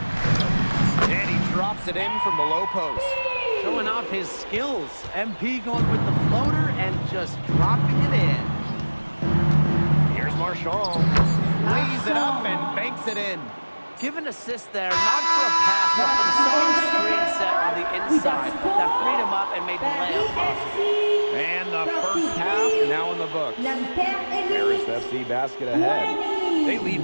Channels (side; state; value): both; inverted; correlation -1.00